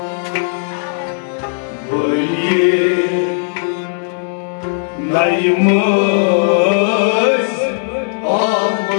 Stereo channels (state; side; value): silent; right; digital silence